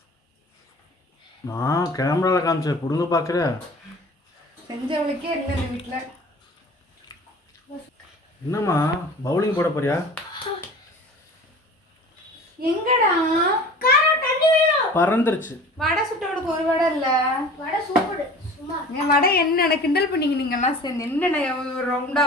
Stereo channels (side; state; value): both; normal; correlation 0.42